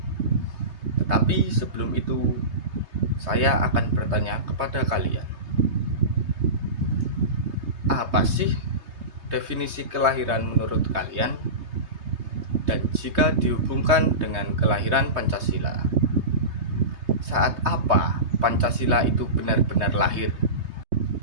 Tetapi sebelum itu, saya akan bertanya kepada kalian, apa sih definisi kelahiran menurut kalian? Dan jika dihubungkan dengan kelahiran Pancasila, saat apa Pancasila itu benar-benar lahir?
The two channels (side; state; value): left; late; 3.2 ms